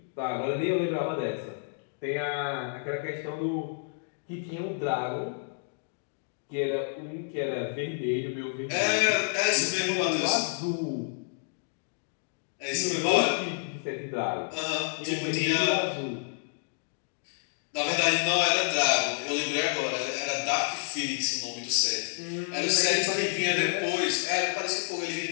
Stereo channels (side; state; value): right; silent; digital silence